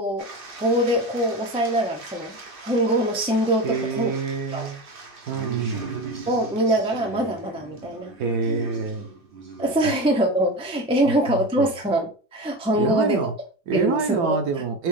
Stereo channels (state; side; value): normal; both; correlation 0.24